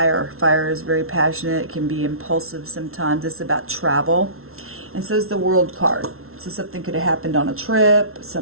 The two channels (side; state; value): left; late; 0.62 ms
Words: Fire is very passionate. It can be impulsive sometimes. It's about travel. And so is the World card. So something could have happened on a trip.